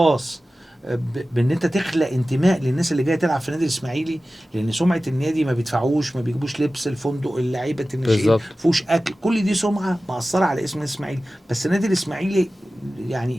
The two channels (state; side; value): normal; both; correlation 0.95